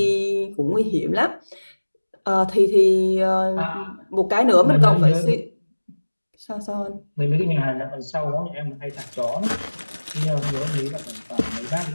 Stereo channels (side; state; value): both; inverted; correlation -1.00